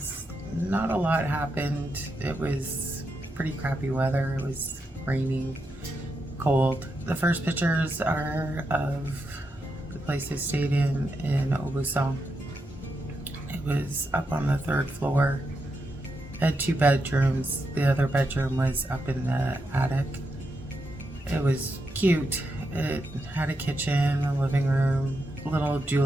not a lot happened. It was pretty crappy weather. It was raining, cold. The first pictures are of the place I stayed in Aubusson. It was up on the third floor. It had 2 bedrooms. The other bedroom was up in the attic. It was cute. It had a kitchen, a living room, little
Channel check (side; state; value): both; normal; correlation 0.84